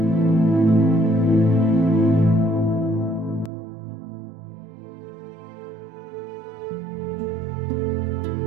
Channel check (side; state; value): left; drops out; at 3.5 s